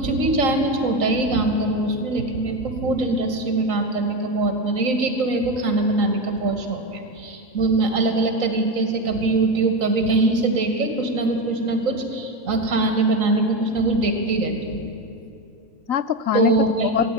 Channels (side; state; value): left; late; 3.9 ms